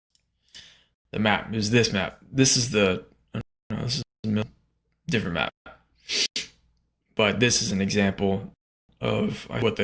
map. It was this map. This is this is a different map. But this is an example of what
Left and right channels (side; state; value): both; identical; correlation 1.00